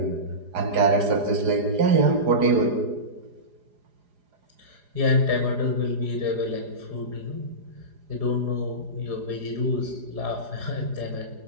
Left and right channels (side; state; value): left; late; 4.9 ms